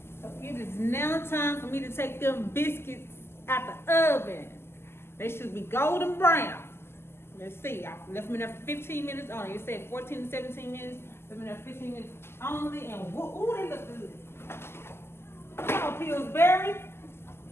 So it is now time for me to take them biscuits out the oven. They should be golden brown. Let's see, I left them in there for 15 minutes only. It said 14 to 17 minutes. Left them in there 15 minutes only, and ooh, they look good. Come on, Pillsbury.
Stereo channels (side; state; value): right; late; 0.12 ms